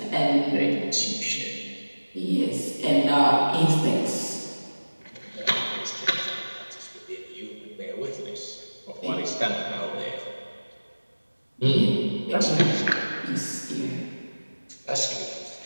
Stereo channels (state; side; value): inverted; both; correlation -1.00